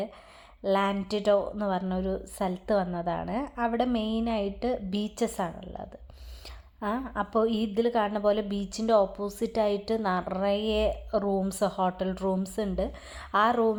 ലാൻഡിഡോ എന്ന് പറഞ്ഞൊരു സ്ഥലത്ത് വന്നതാണ്. അവിടെ മെയിനായിട്ട് ബീച്ചസ് ആണുള്ളത്. അപ്പോൾ ഇതിൽ കാണുന്ന പോലെ ബീച്ചിൻ്റെ ഓപ്പോസിറ്റായിട്ട് നിറയെ ഹോട്ടൽ റൂംസ് ഉണ്ട്. ആ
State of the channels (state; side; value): identical; both; correlation 1.00